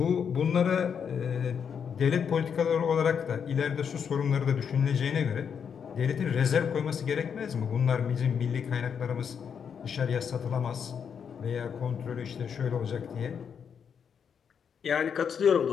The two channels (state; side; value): quieter; right; 7.2 dB